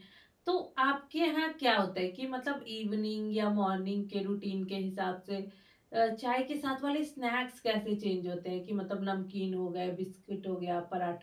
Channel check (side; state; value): both; identical; correlation 1.00